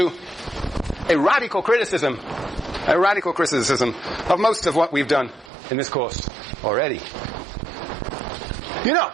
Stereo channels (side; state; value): left; drops out; at 5.5 s